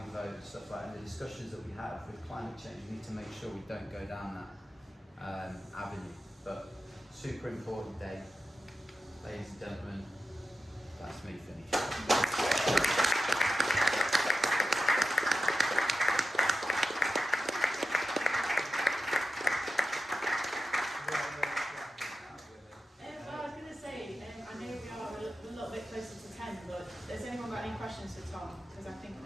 vote and stuff like that. And the discussions that we have with climate change, we need to make sure we don't go down that avenue. But super important day, ladies and gentlemen. That's me finished. Questions for Tom, because I think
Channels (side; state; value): both; normal; correlation 0.91